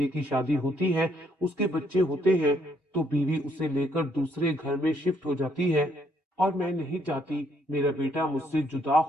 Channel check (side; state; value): both; normal; correlation 0.70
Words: की शादी होती है, उसके बच्चे होते हैं, तो बीवी उसे लेकर दूसरे घर में शिफ्ट हो जाती है और मैं नहीं चाहती मेरा बेटा मुझसे जुदा